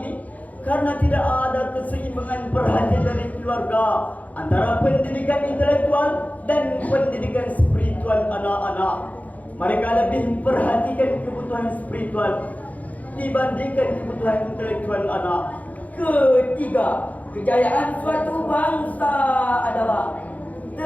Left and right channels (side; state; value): right; late; 0.074 ms